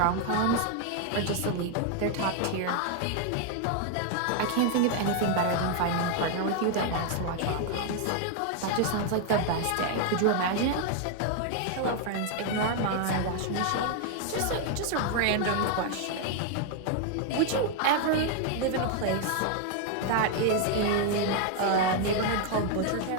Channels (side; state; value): both; different; correlation 0.00